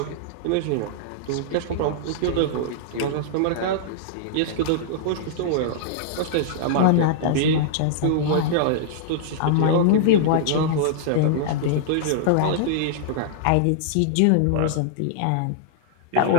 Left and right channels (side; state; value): both; different; correlation -0.01